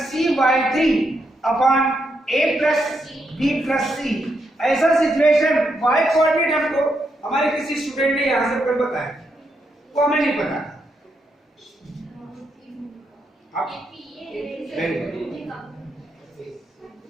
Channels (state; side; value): normal; both; correlation 0.80